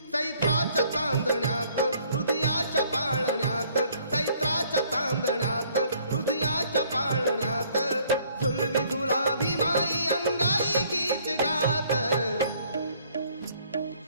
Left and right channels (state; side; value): inverted; both; correlation -0.62